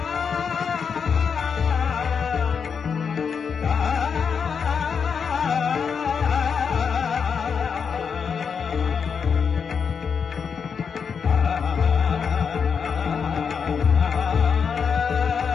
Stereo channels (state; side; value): quieter; right; 6.3 dB